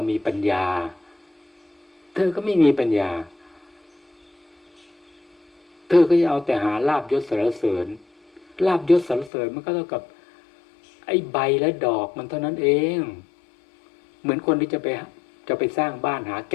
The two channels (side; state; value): right; drops out; at 9.3 s